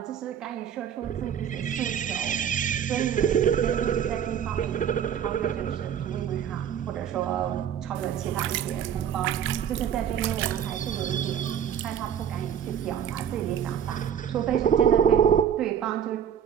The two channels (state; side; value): quieter; left; 8.9 dB